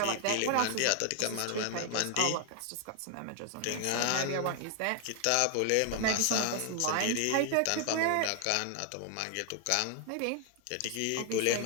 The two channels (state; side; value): different; both; correlation 0.00